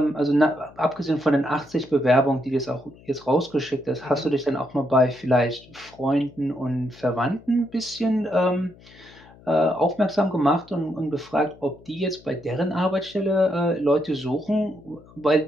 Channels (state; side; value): noise; left; hum, 24 dB below the sound